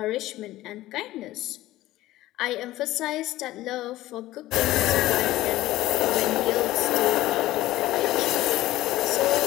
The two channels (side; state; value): right; quieter; 16.2 dB